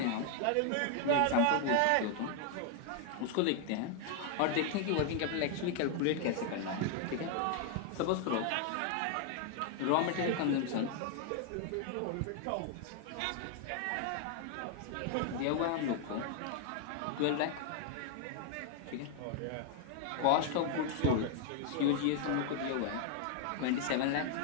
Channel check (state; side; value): different; both; correlation 0.00